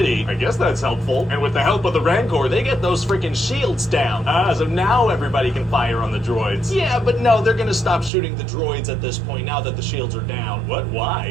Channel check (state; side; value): drops out; left; at 8.1 s